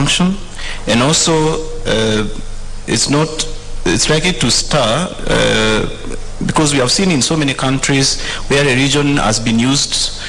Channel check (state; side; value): identical; both; correlation 1.00